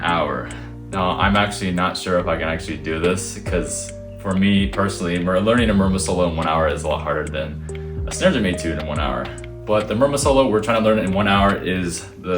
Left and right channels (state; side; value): identical; both; correlation 1.00